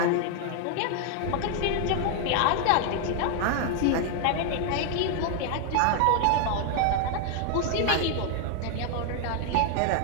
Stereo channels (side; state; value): both; different; correlation 0.00